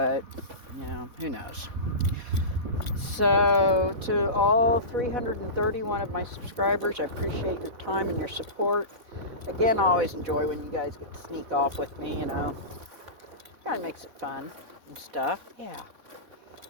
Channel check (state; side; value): late; left; 4.1 ms